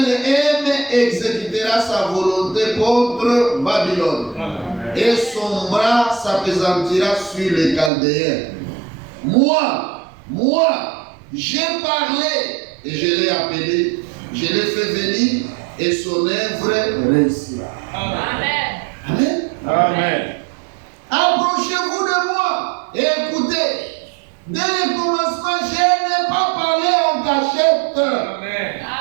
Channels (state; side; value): drops out; left; at 7.9 s